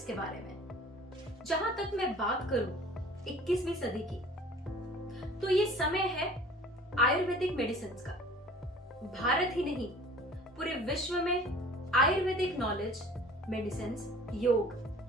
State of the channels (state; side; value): normal; both; correlation 0.47